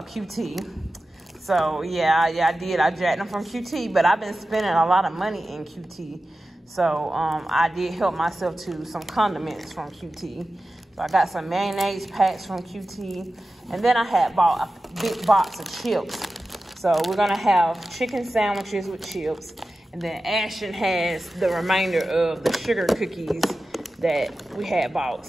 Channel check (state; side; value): normal; both; correlation 0.94